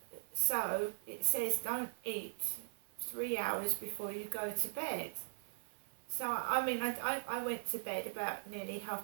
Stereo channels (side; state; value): left; silent; 51 dB below the other